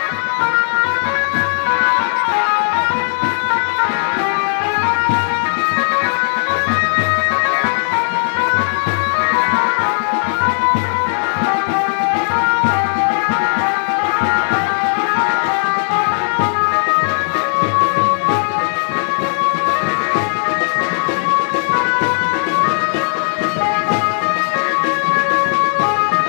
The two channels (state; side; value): silent; right; digital silence